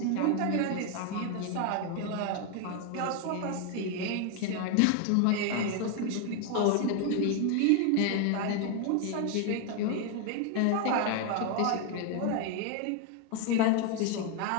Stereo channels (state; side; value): different; both; correlation 0.01